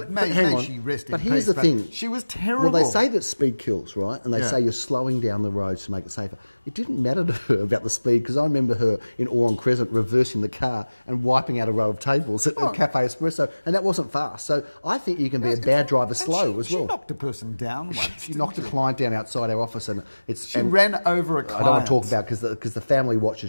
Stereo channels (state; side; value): inverted; both; correlation -1.00